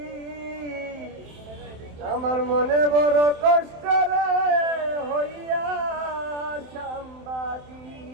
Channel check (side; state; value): left; late; 27 ms